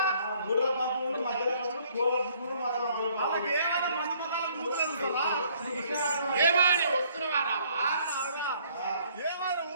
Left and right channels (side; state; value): both; inverted; correlation -0.62